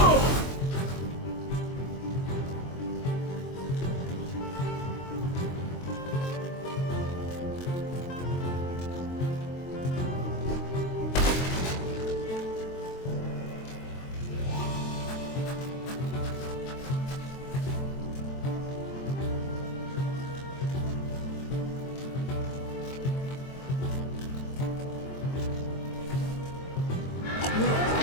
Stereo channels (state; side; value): late; right; 23 ms